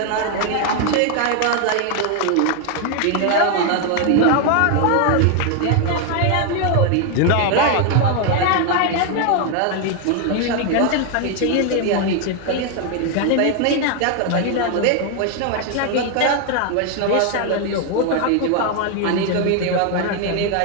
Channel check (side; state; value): both; different; correlation 0.01